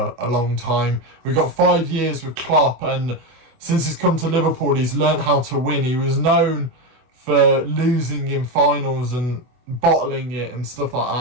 a long time. We've got 5 years with Klopp, and since he's come to Liverpool, he's learnt how to win. He was known for losing in finals and bottling it and stuff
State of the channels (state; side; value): late; left; 24 ms